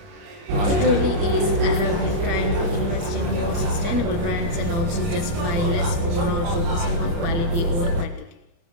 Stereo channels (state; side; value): late; left; 30 ms